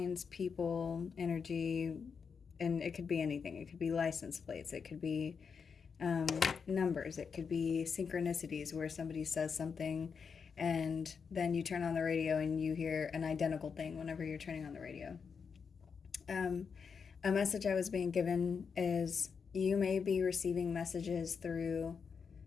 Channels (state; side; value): quieter; right; 6.0 dB